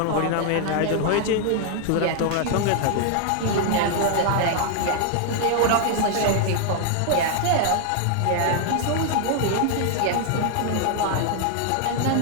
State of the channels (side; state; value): both; different; correlation 0.00